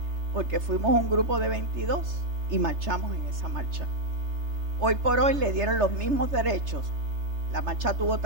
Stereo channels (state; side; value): late; left; 3.3 ms